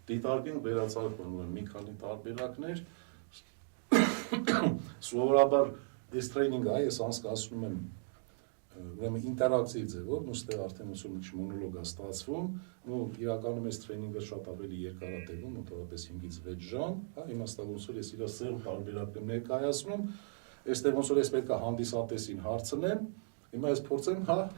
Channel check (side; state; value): left; silent; digital silence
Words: դիտարկենք վերացարկման ուրեմն մի քանի տարբերակներ, սովորաբար այս տրեյնինգը ես անցկացնում եմ ուրեմն ինտերակցիվ ձևով, նստեղ արդեն ուսում ինչ մոնոլոգ է ստացվում, ու իրականում այս տրեյնինգը շատ ավելի երկար է տևում, մոտավորապես 5-ից 6 ժամ, հա, իմաստով ոնց որ ես իր սերտ տարբերակներ ներկայացնում, այստեղ ոնց որ ես պետք է հանդիսատեսին հարցնեմ, հիմա ես փորձեմ, հա,